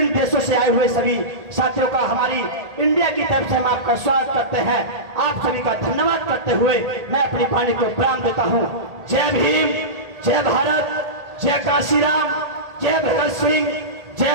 देशों से आए हुए सभी साथियों का हमारी इंडिया की तरफ से हम आपका स्वागत करते हैं। आप सभी का धन्यवाद करते हुए मैं अपनी वाणी को विराम देता हूं। जय भीम, जय भारत, जय कांशीराम, जय भगत सिंह,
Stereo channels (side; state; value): left; late; 1.8 ms